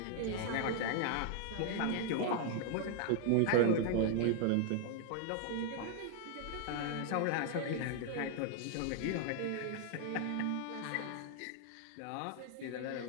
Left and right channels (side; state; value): both; different; correlation 0.00